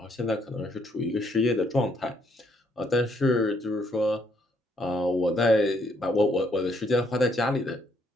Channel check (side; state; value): both; normal; correlation 0.71